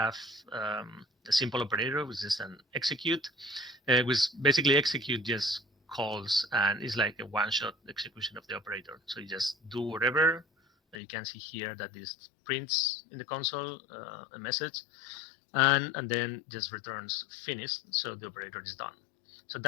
a simple operator, which is an execute, which basically execute just calls and it's like a one-shot execution of the operator. So you just do whatever. You can see here that this prints in the console a message, and then just returns finished, so the operator is done. So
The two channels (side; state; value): right; drops out; at 11.0 s